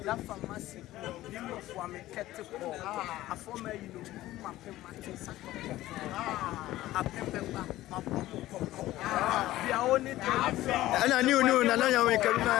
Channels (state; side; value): quieter; right; 15.7 dB